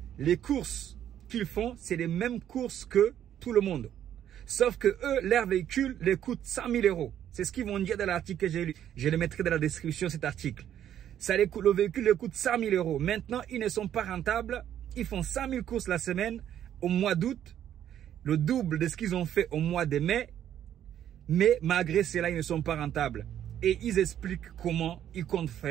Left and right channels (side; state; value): left; quieter; 10.5 dB